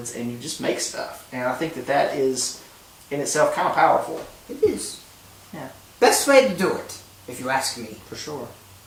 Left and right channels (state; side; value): identical; both; correlation 1.00